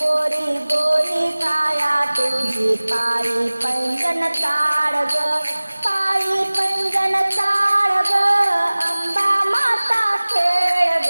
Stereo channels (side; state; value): both; inverted; correlation -1.00